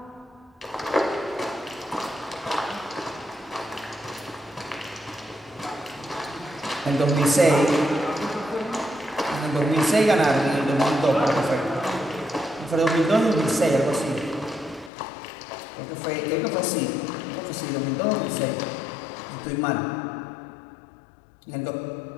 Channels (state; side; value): drops out; right; at 14.9 s